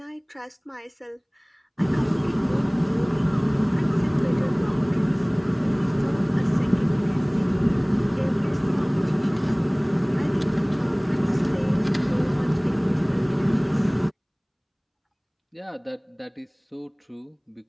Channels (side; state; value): both; identical; correlation 1.00